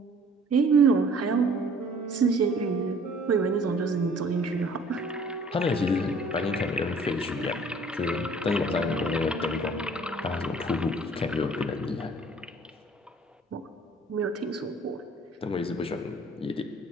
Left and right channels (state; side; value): normal; both; correlation 0.54